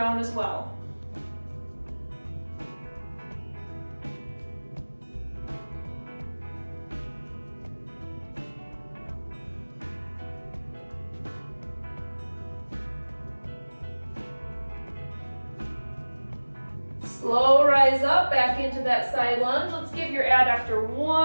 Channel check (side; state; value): both; inverted; correlation -1.00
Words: as well. Slow rise up, back into that side lunge. Let's give your adductor